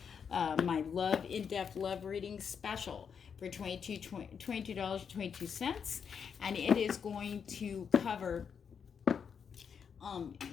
my in-depth love reading special for $22.22, and it is going to cover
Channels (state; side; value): quieter; right; 6.9 dB